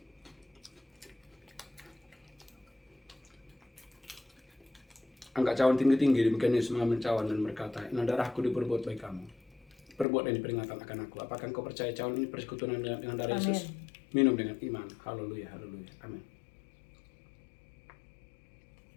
Angkat cawan tinggi-tinggi, demikian Yesus mengambil cawan dan berkata, inilah darahku diperbuat baik kamu. Perbuat dan peringatan akan aku. Apakah engkau percaya cawan ini persekutuan dengan darah Amin. Yesus? Minum dengan iman. Haleluya, haleluya. Amin.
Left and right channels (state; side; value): drops out; right; at 10.1 s